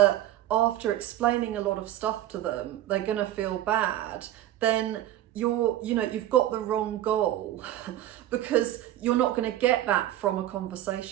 after explaining a lot of stuff to them, they're gonna feel bad, then you've got the wrong goal, because you're not going to get that from a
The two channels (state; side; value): quieter; left; 13.2 dB